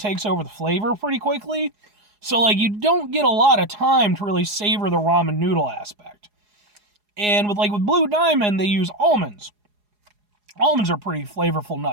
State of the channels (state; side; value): late; left; 4.8 ms